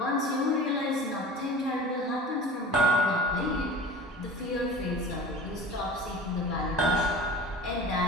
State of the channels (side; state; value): both; normal; correlation 0.39